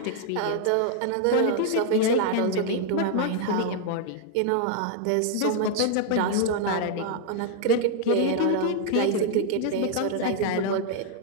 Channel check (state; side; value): different; both; correlation 0.00